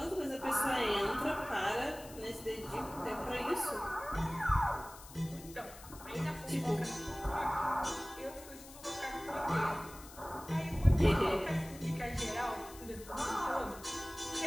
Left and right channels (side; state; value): left; noise; hiss, 17 dB below the sound